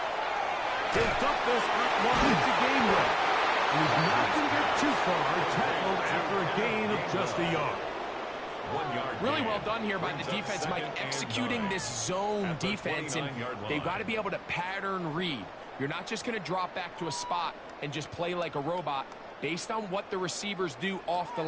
He'll dump this up wide to Gainwell. He's not going to get too far, tackled after a gain of just a yard. 1 yard. Really well done here by the defense, Mike, executing this zone defense, and they've got to be able to pattern read. You're not just going to drop back to a spot and just play like a robot. Based on what the receivers do off the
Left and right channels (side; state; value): both; identical; correlation 1.00